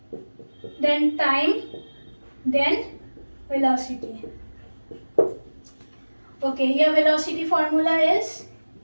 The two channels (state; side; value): inverted; both; correlation -1.00